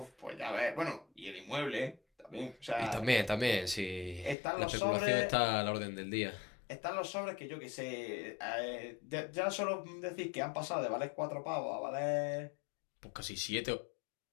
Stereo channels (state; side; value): drops out; right; at 4.4 s